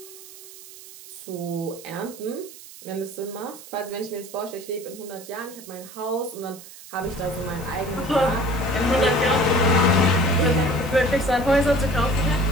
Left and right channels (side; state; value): right; noise; hiss, 17 dB below the sound